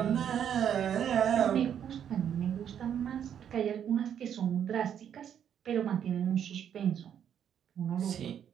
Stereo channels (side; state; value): left; quieter; 9.0 dB